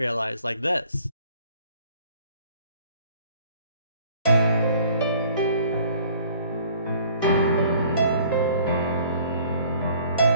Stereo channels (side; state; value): both; inverted; correlation -0.56